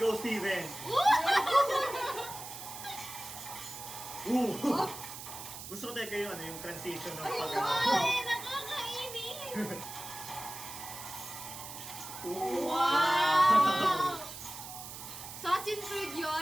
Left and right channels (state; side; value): noise; right; hiss, 11 dB below the sound